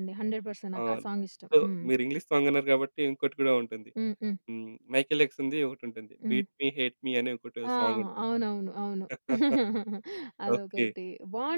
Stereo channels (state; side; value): inverted; both; correlation -1.00